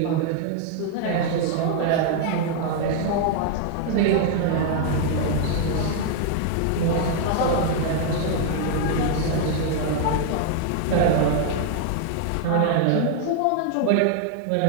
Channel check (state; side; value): different; both; correlation 0.00